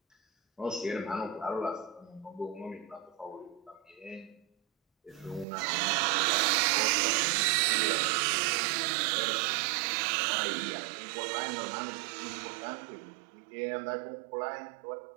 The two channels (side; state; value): left; drops out; at 5.5 s